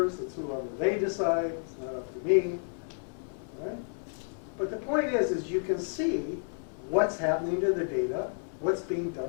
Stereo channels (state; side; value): silent; right; digital silence